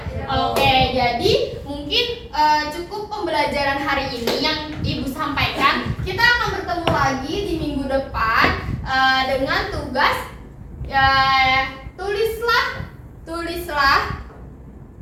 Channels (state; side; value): identical; both; correlation 1.00